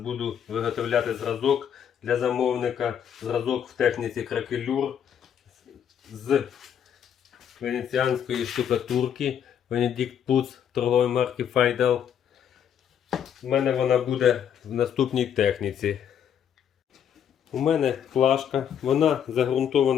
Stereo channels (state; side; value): quieter; right; 8.8 dB